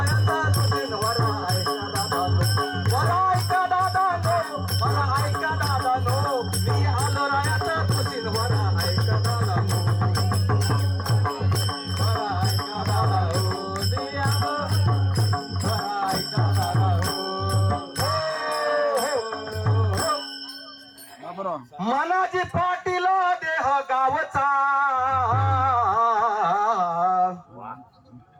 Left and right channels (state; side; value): identical; both; correlation 1.00